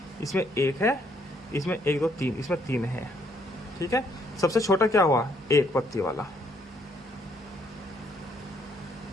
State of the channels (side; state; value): both; normal; correlation 0.69